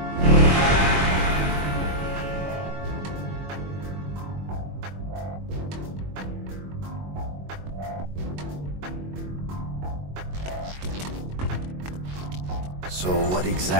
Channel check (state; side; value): late; left; 22 ms